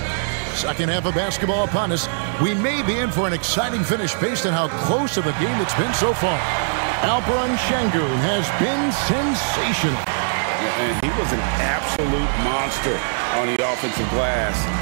Second half of basketball upon us. We may be in for an exciting finish based on how close of a game it's been so far. Alperen Sengun has been sensational. And he was an absolute monster on the offensive glass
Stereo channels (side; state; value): left; silent; digital silence